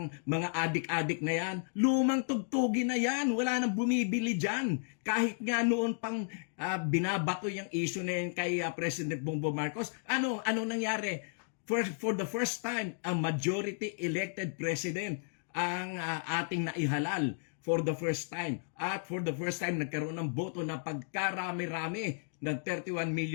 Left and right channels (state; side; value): silent; right; digital silence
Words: mga adik-adik na yan, lumang tugtugin na yan, wala nang bumibili dyan. Kahit nga noon pang binabato yung issue na yan kay President Bongbong Marcos, ano nangyari? For the first time, a majority elected president ang ating naihalal for the first time. At for the first time, nagkaroon ng boto na pagkarami-rami ng 31